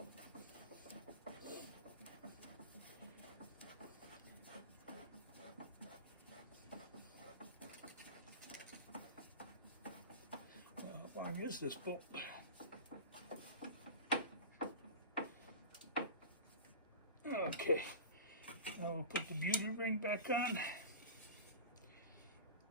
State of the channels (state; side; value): inverted; both; correlation -0.32